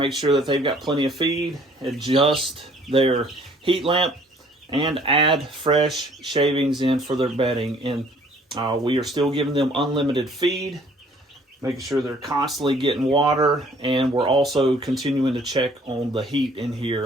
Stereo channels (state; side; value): normal; both; correlation 0.57